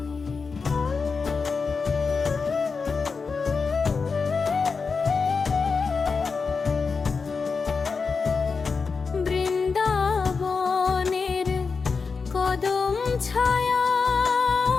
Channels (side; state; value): right; quieter; 4.9 dB